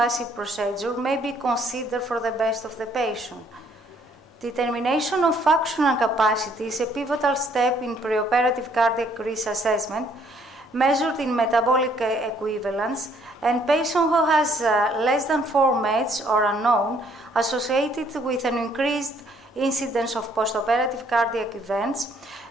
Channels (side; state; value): both; normal; correlation 0.64